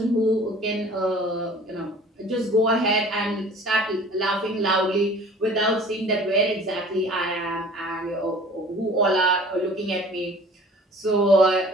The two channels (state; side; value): normal; both; correlation 0.47